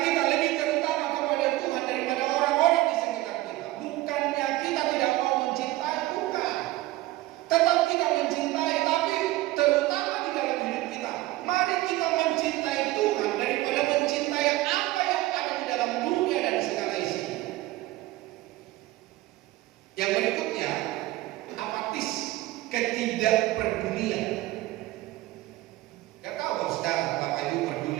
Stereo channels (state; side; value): quieter; left; 17.7 dB